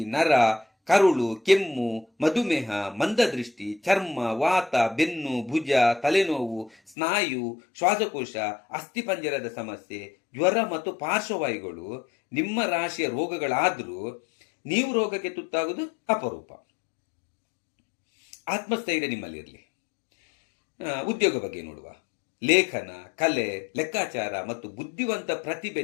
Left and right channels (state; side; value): drops out; right; at 7.0 s